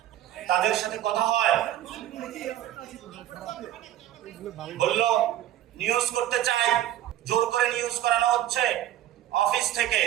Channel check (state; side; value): quieter; left; 12.8 dB